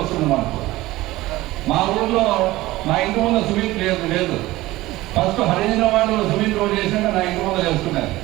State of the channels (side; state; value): left; quieter; 17.9 dB